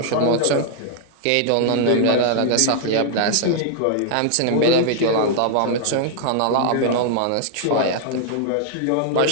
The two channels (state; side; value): different; both; correlation 0.00